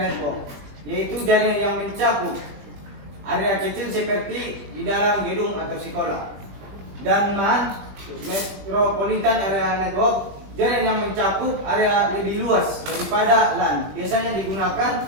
Network, yaitu jaringan yang mencakup area kecil seperti di dalam gedung atau sekolah. Dan MAN, Metropolitan Area Network, jaringan yang mencakup area lebih luas daripada LAN, biasanya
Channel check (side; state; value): left; late; 20 ms